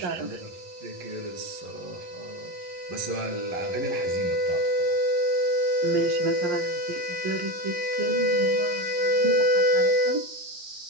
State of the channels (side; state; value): left; late; 11 ms